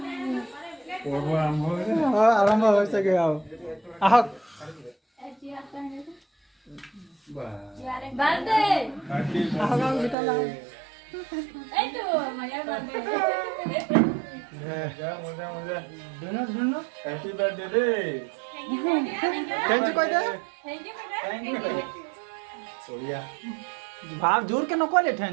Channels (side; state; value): left; drops out; at 10.2 s